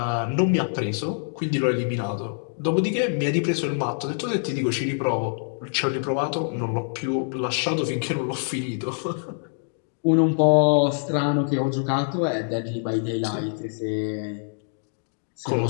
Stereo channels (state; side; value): silent; right; digital silence